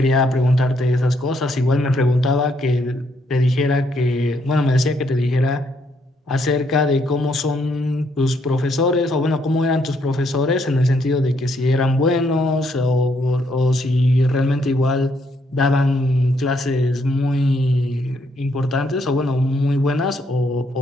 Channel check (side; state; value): both; normal; correlation 0.73